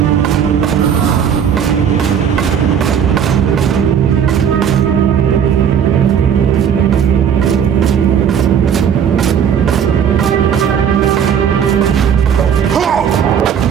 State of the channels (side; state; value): left; quieter; 8.1 dB